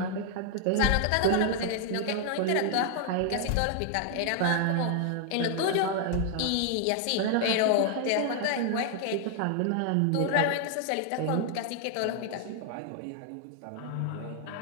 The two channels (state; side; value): different; both; correlation 0.00